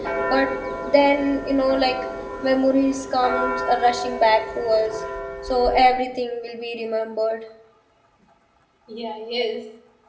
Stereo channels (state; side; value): identical; both; correlation 1.00